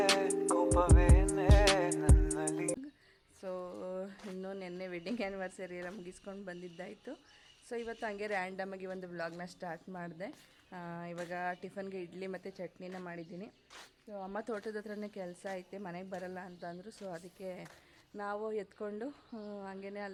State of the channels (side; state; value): both; identical; correlation 1.00